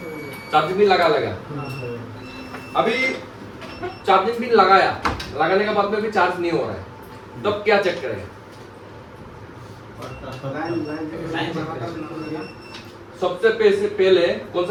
चार्जिंग पिन लगा अभी चार्जिंग पिन लगाने के बाद में भी चार्ज नहीं हो रहा है तब क्या चेक करेगा सबसे पहले कौन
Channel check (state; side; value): identical; both; correlation 1.00